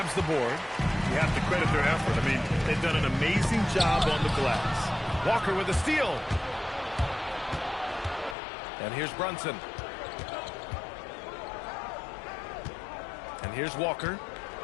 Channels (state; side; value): drops out; right; at 8.3 s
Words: the board. You have to credit their effort. I mean, they've done an amazing job on the glass. Walker with a steal. And here's Brunson. And here's Walker.